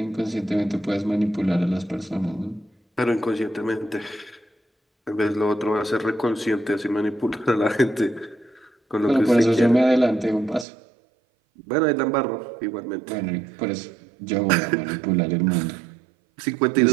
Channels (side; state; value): left; drops out; at 10.7 s